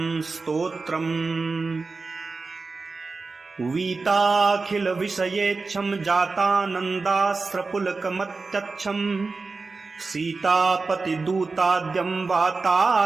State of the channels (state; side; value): quieter; left; 4.0 dB